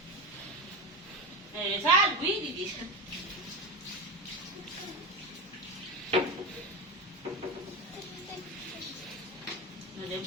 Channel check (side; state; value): both; normal; correlation 0.20